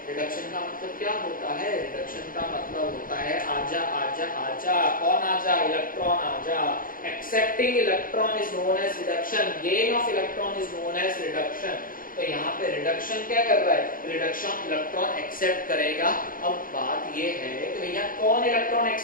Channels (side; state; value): right; late; 0.40 ms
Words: रिडक्शन का मतलब क्या होता है? रिडक्शन का मतलब होता है आजा आजा आजा। कौन आजा? इलेक्ट्रॉन आजा। Accepting electron is known as reduction. Gain of electron is known as reduction. तो यहाँ पे रिडक्शन क्या कर रहा है? रिडक्शन इलेक्ट्रॉन एक्सेप्ट करेगा। अब बात ये है कि भैया कौन इलेक्ट्रॉन